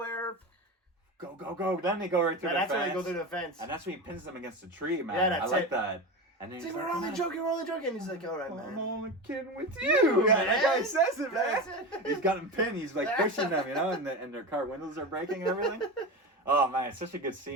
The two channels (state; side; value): normal; both; correlation 0.23